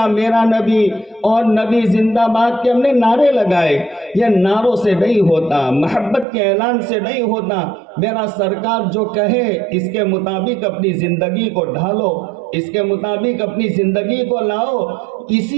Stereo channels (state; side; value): drops out; left; at 6.2 s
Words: میرا نبی اور نبی زندہ باد کے ہم نے نعرے لگائے، یہ نعروں سے نہیں ہوتا، محبت کے اعلان سے نہیں ہوتا۔ میرا سرکار جو کہے اس کے مطابق اپنی زندگی کو ڈھالو، اس کے مطابق اپنی زندگی کو لاؤ،